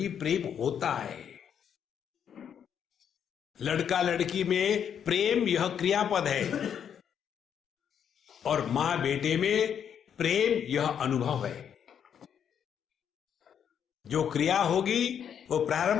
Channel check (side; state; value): right; quieter; 8.3 dB